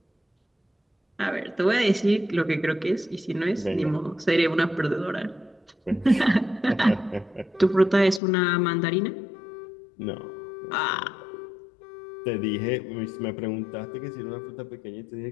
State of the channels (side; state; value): right; drops out; at 8.2 s